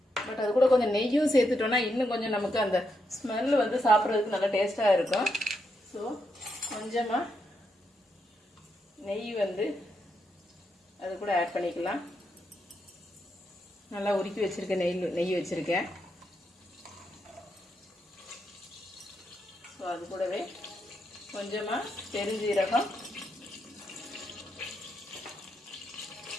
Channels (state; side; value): normal; both; correlation 0.82